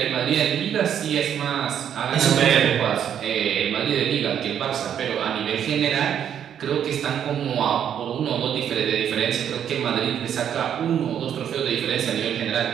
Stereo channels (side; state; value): left; quieter; 9.2 dB